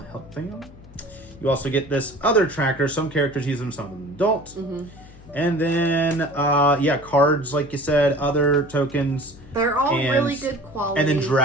health thing on. You also get this other tracker. Some characters use them, some of them don't. And then, cards, like you said, other tokens. They're all and- really good quality. And then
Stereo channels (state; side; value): noise; left; hum, 21 dB below the sound